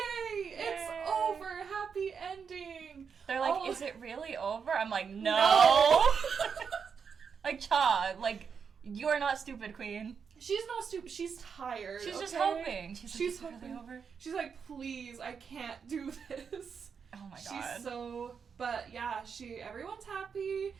It's over. Happy ending. They're like, is it really over? I'm like, no. Like, Cha, like, you are not stupid, queen. She's not stupid. She's tired. She's just hoping. She's like, hoping. Really over? She's like, please, I can't do this. Oh my god. She's so, but yeah, everyone's happy.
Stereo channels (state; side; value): quieter; left; 6.3 dB